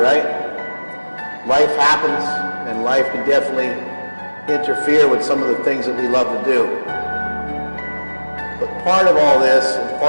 Life happens, and life can definitely interfere with some of the things that we love to do. But part of all this, and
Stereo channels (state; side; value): inverted; both; correlation -1.00